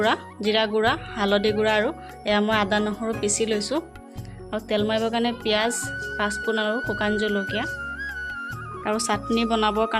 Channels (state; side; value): identical; both; correlation 1.00